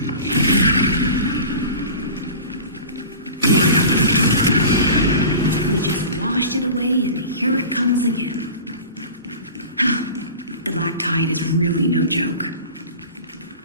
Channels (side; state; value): both; inverted; correlation -0.36